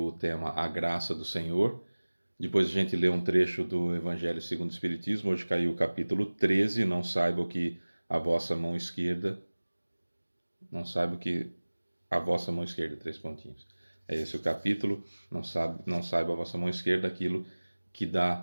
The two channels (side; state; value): both; inverted; correlation -1.00